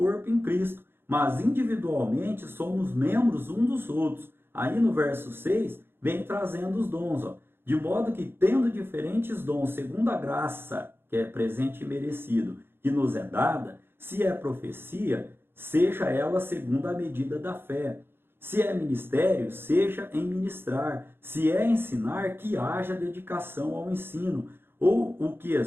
em Cristo, mas individualmente somos membros uns dos outros. Aí no verso 6, vem trazendo os dons, de modo que tendo diferentes dons, segundo a graça que é presente e merecido, que nos é dada, se é profecia, seja ela segundo a medida da fé. Se é ministério, seja em ministrar. Se é ensinar, que haja dedicação ao ensino. Ou o que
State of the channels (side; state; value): left; late; 0.11 ms